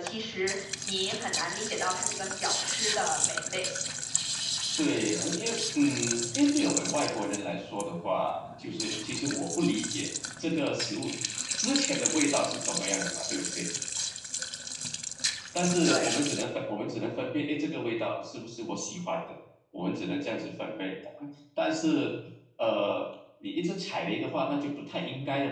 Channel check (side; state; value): both; identical; correlation 1.00